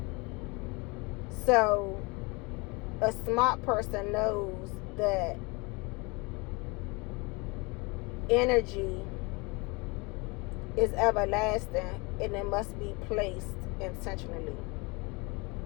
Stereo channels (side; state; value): right; quieter; 27.6 dB